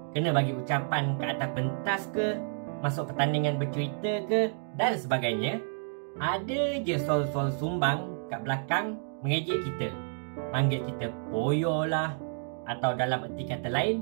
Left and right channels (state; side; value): silent; left; digital silence